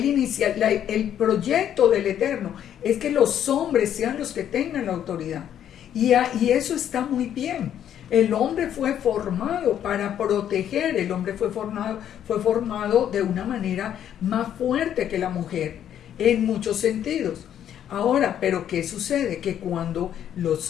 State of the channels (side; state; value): right; quieter; 10.1 dB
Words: proyecto del Eterno es que los hombres sean los que tengan la autoridad, y eso está muy bien. El hombre fue formado para proteger, el hombre fue formado de una manera más fuerte que la mujer, en muchos sentidos. Ahora, ¿pero qué sucede? Que cuando los